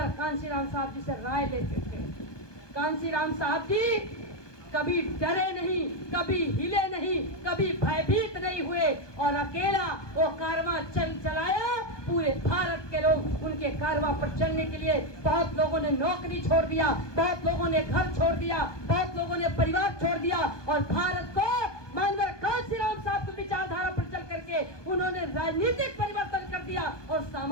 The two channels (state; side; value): late; right; 1.2 ms